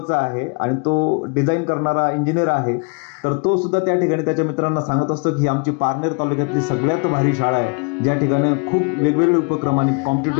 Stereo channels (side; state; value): right; quieter; 34.7 dB